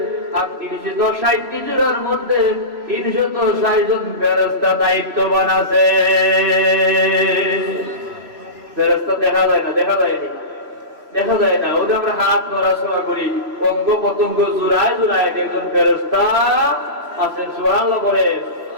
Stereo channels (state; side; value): late; left; 3.0 ms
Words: আর 360টি জোড়ার মধ্যে 360 জন ফেরেশতা দায়িত্ববান আছে। ফেরেশতা দেখা যায় না, দেখা যায়নি, দেখা যায় না। ওদের আমরা হাত নড়াচড়া করি, অঙ্গ পতঙ্গ জোড়ায় জোড়ায় একজন ফেরেশতা আছেন। সুবহানাল্লাহ বলেন।